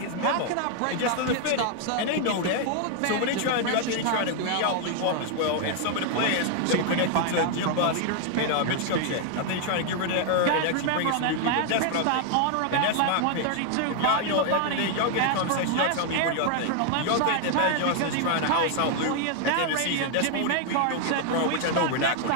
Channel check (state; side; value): different; both; correlation 0.00